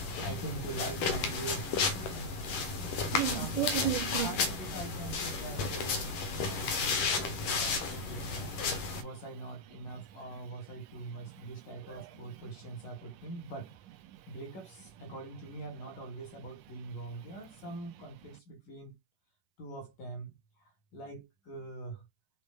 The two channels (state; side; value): late; right; 11 ms